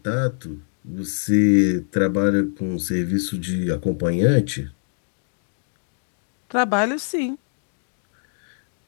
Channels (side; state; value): right; silent; 63 dB below the other